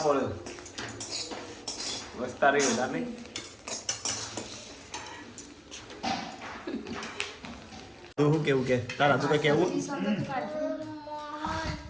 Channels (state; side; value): identical; both; correlation 1.00